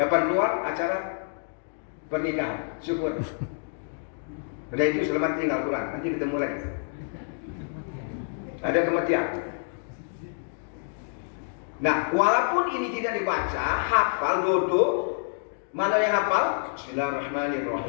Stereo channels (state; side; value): silent; right; digital silence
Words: keluar acara pernikahan, syukur. Udah itu selamat tinggal Quran, nanti ketemu lagi. Ada kematian. Nah, walaupun ini tidak dibaca, hafal, duduk, mana yang hafal?